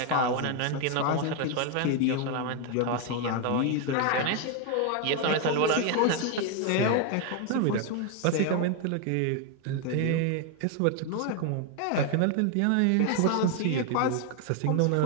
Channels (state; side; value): different; both; correlation 0.01